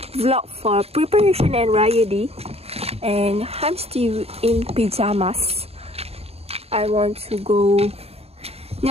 vlog for preparation and Raya Day. And I'm still in pajamas. I want to go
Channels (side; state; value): left; late; 0.29 ms